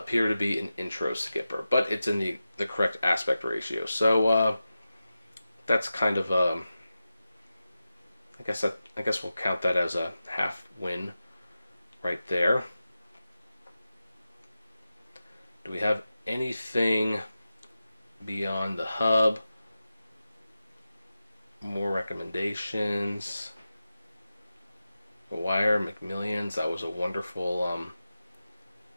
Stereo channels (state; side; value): inverted; both; correlation -0.93